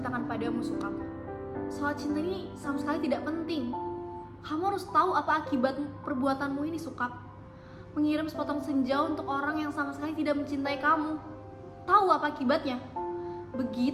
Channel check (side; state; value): both; identical; correlation 1.00